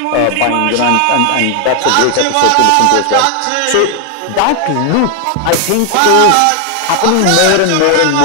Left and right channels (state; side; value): different; both; correlation 0.00